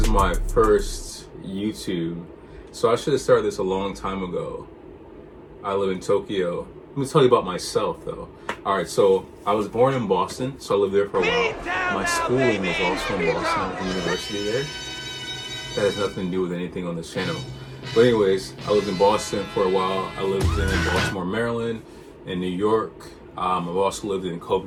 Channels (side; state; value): both; identical; correlation 1.00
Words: my first YouTube. So I should have started this a long time ago. I live in Tokyo. Let me tell you about myself though. Alright, so I was born in Boston, so I lived there for a while. My schooling was also in Boston, at the university there. That has nothing to do with anything on this channel. But anyways, I lived in Boston for a while. I lived in Baltimore, Maryland, in New York. I've also lived in